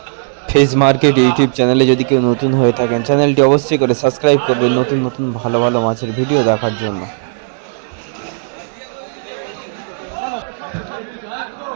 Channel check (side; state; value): left; silent; digital silence